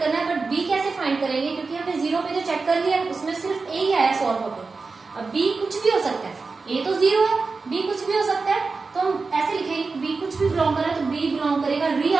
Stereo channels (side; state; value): left; quieter; 4.2 dB